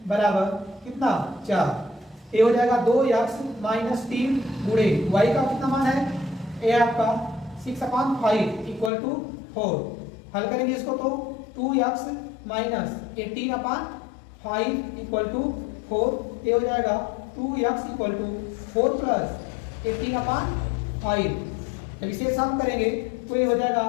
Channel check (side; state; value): right; drops out; at 8.9 s